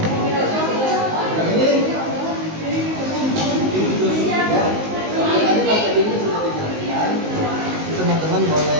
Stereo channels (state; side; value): late; left; 19 ms